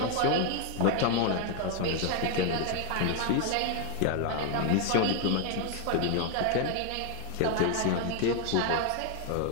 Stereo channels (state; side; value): different; both; correlation 0.01